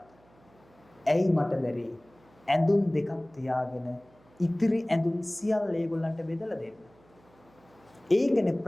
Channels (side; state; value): right; noise; hum, 30 dB below the sound